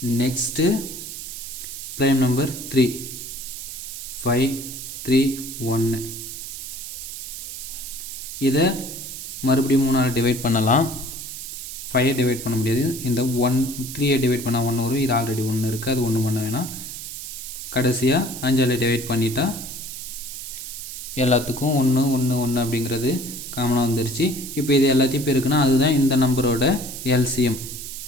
Next prime number 3, 5, 3, 1. இதை மறுபடியும் 3ஆல் டிவைட் பண்ணலாம். 5 டிவைட் பண்ண முடியாது. இந்த 3 டிவைட் பண்ணால் 1 வரும். இது ஆல்ரெடி 1 இருக்குது, அது 1 பண்ண வேணாம். கடைசியாக 5ஆல் டிவைட் பண்ணிட்டா எல்லாத்துக்கும் 1 1 1 அப்படிங்கிறது காமனாக வந்துருச்சு. இப்போ இது எல்லாத்தையும் பெருக்குன்னா அதுதான் இந்த நம்பரோட LCM.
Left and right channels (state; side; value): noise; right; hiss, 9 dB below the sound